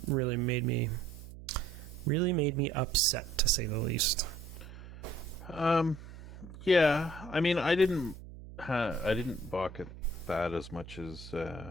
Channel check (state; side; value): noise; right; hum, 15 dB below the sound